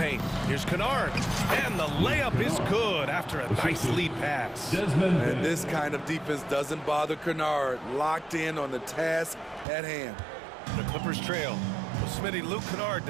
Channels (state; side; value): drops out; left; at 9.7 s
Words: Here's Kennard. And the layup is good after a nice lead pass. And this kind of defense doesn't bother Kennard. Locked in on the task at hand. The Clippers trail. Well, Smitty, Luke Kennard